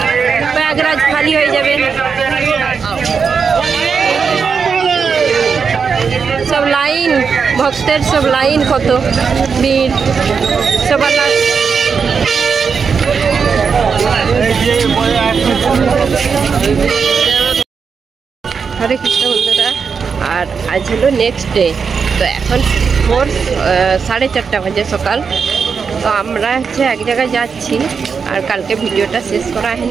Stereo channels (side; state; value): left; quieter; 5.9 dB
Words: প্রয়াগরাজ খালি হয়ে যাবে। সব লাইন, ভক্তের সব লাইন, কত ভিড় সবার। হরে কৃষ্ণ বন্ধুরা। আর আজ হলো নেক্সট ডে। তো এখন 4:30 বাজে সকাল। তো আমরা হচ্ছে এক জায়গায় যাচ্ছি। আর কালকে ভিডিওটা শেষ করা